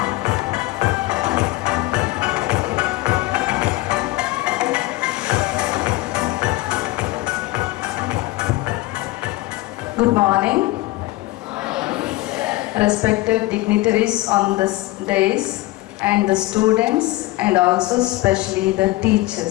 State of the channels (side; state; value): right; quieter; 19.0 dB